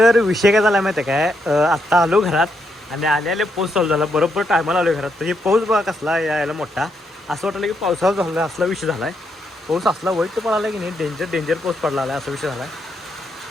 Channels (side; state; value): both; normal; correlation 0.79